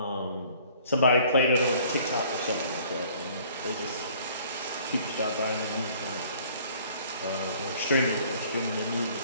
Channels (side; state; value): both; inverted; correlation -0.55